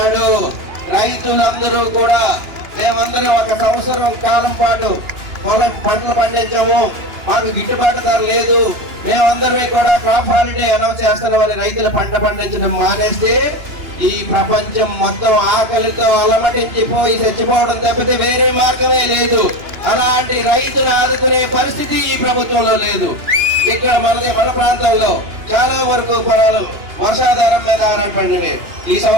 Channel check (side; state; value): left; late; 2.9 ms